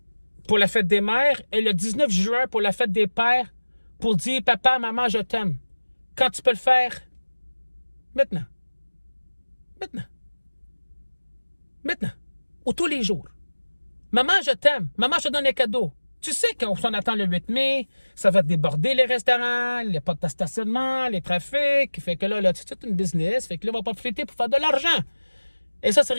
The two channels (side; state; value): both; inverted; correlation -1.00